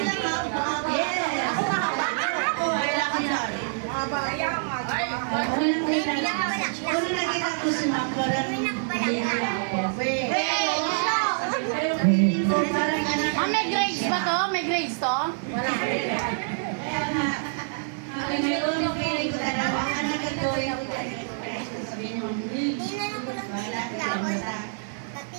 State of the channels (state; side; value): silent; left; digital silence